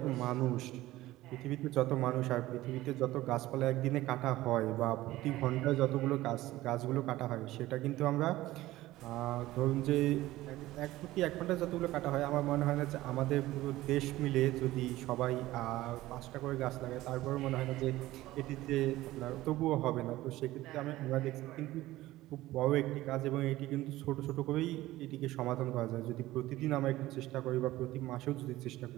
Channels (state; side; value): quieter; left; 16.7 dB